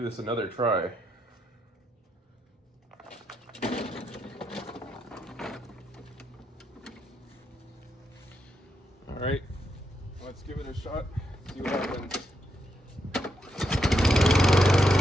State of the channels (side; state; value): both; normal; correlation 0.81